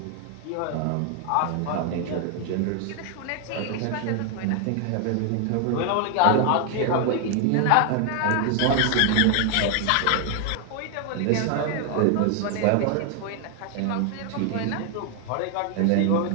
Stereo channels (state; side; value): different; both; correlation 0.00